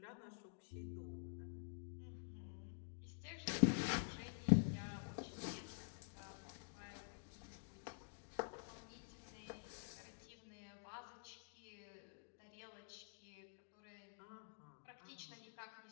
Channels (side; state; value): right; silent; digital silence